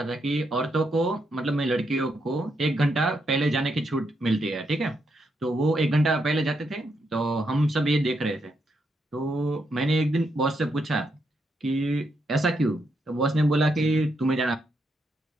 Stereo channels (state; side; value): normal; both; correlation 0.80